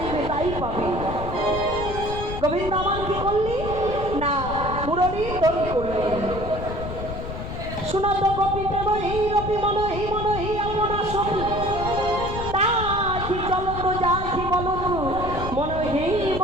তাই পাবে। গোবিন্দ আমার কি করলি না, মুরলী ধ্বনি করলি। শোনো তো গোপী প্রেমহী রূপী, মনহি মনহি আপনার সখী, তাহি চলো তো যাহি বলো তো, মনহি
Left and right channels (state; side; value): noise; left; rumble, 7 dB below the sound